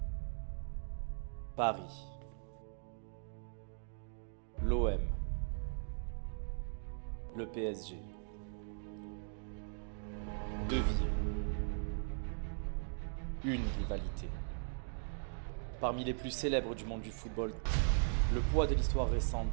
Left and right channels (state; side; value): silent; left; digital silence